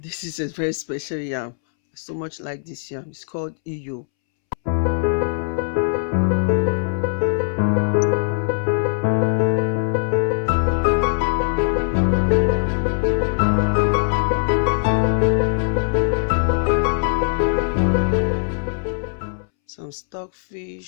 is a very special yam. I so much like this yam. It's called iyo. Some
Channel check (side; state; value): right; silent; 65 dB below the other